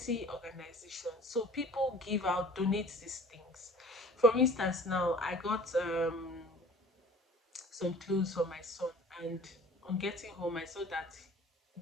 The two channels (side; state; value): both; normal; correlation 0.46